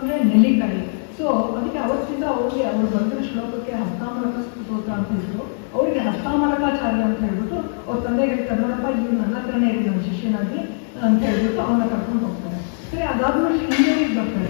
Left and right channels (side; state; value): right; silent; digital silence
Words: ನೆಲ್ಲಿಕಾಯಿ. ಸೊ ಅದಕ್ಕೆ ಅವತ್ತಿಂದ ಅವ್ರು ಬಂದಿರೋ ಶ್ಲೋಕಕ್ಕೆ ಹಸ್ತಾಮಲಕ ಸ್ತೋತ್ರ ಅಂತ ಇದ್ರು. ಅವರಿಗೆ ಹಸ್ತಾಮಲಕಾಚಾರ್ಯ ಅಂತ ಹೇಳ್ಬಿಟ್ಟು ಅವ್ರ ತಂದೆಗೆ ಹೇಳ್ತಾರೆ, ನೋಡಪ್ಪ ಇವ್ರು ನನ್ನ ಹತ್ರನೇ ಇರಿ ನನ್ನ ಶಿಷ್ಯನಾಗಿ ಅಂತ ಹೇಳ್ಬಿಟ್ಟು ಅವನ್ನ ಕರ್ಕೊಂಡು ಹೋಗ್ತಾರೆ. ಸರಿ, ಅದಾದ್ಮೇಲೆ ಶೃಂಗೇರಿಗೆ